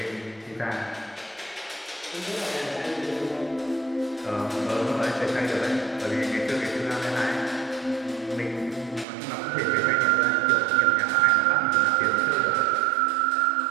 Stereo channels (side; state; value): left; drops out; at 9.1 s